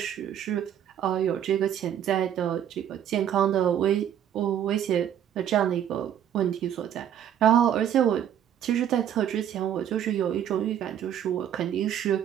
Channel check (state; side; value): quieter; left; 10.0 dB